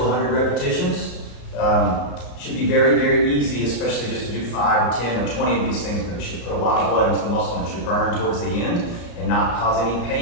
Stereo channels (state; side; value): late; right; 34 ms